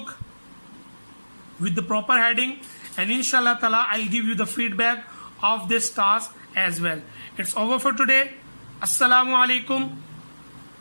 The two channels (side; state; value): both; inverted; correlation -1.00